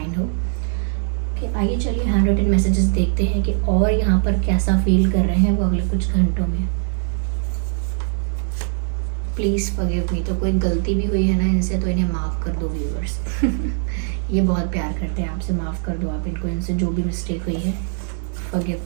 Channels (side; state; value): left; silent; 65 dB below the other